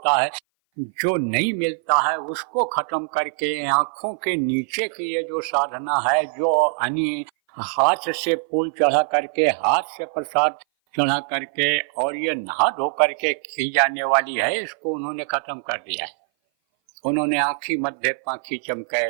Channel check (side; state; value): left; silent; 58 dB below the other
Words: है, जो नहीं मिलता है उसको खत्म करके आंखों के नीचे की ये जो साधना है, जो हाथ से फूल चढ़ा करके, हाथ से प्रसाद चढ़ा करके और ये नहा धो करके की जाने वाली है, इसको उन्होंने खत्म कर दिया है। उन्होंने आँखी मध्य पाखी चमके,